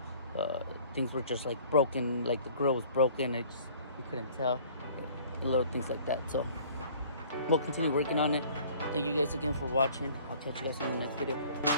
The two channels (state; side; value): inverted; both; correlation -0.52